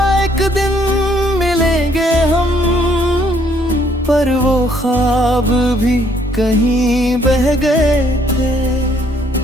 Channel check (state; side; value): normal; both; correlation 0.66